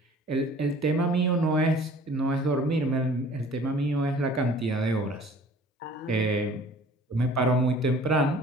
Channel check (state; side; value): normal; both; correlation 0.49